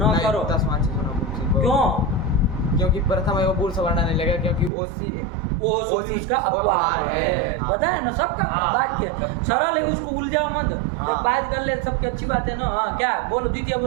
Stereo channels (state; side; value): drops out; left; at 4.7 s